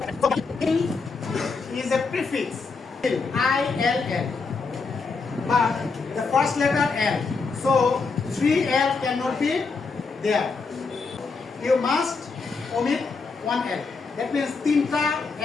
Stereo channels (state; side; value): quieter; right; 4.5 dB